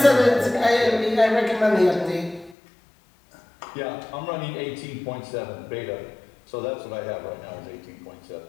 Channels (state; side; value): drops out; right; at 2.6 s